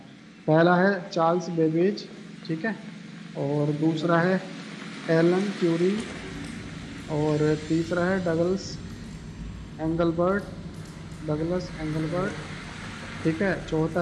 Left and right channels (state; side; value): identical; both; correlation 1.00